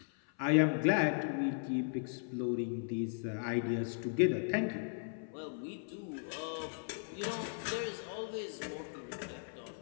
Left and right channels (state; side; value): silent; right; 53 dB below the other